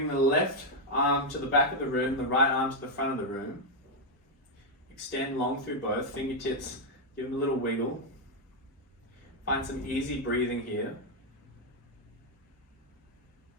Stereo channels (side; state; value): both; normal; correlation 0.00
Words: the left arm to the back of the room, the right arm to the front of the room. Extend long through both, fingertips, give them a little wiggle. Find some easy breathing here.